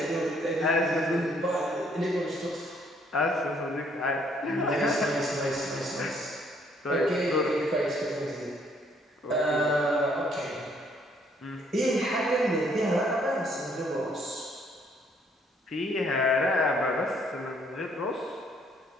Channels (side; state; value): both; normal; correlation 0.66